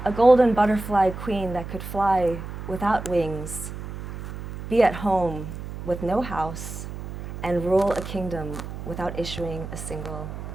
A golden butterfly queen that could fly without wings, be at home with no house, and rule a kingdom without issuing a single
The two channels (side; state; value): right; noise; hum, 9 dB below the sound